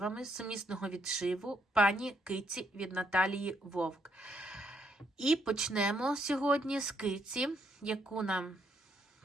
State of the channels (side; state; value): both; normal; correlation 0.74